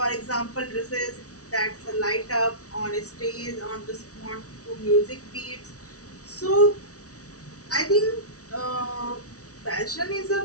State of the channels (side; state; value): right; late; 0.66 ms